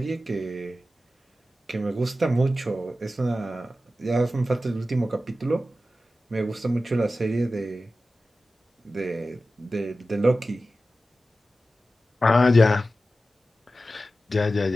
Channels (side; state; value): both; normal; correlation 0.94